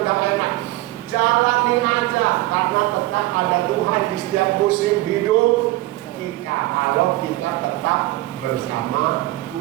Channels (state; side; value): quieter; left; 18.7 dB